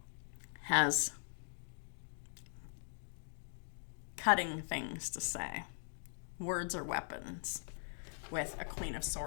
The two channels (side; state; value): right; silent; digital silence